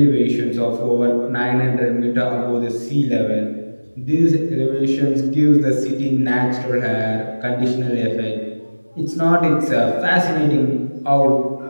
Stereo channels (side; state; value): both; inverted; correlation -1.00